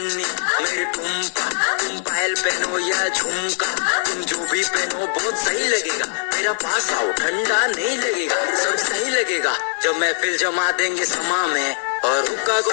मेरी टुम्पा, तुम पायल पहनो या झुमका, तुम जो भी पहनो बहुत सही लगेगा, मेरा पास आओ ठंडा नहीं लगेगा, सब सही लगेगा, जब महफिल जमा देंगे समा में और हुक्का को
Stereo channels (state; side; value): silent; right; 62 dB below the other